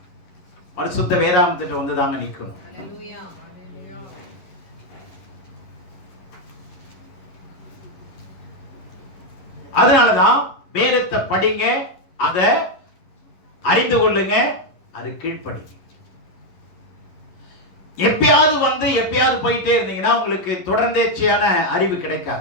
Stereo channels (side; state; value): right; late; 11 ms